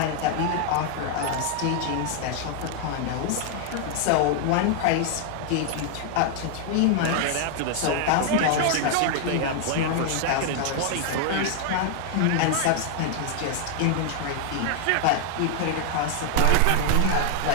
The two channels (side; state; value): both; different; correlation 0.00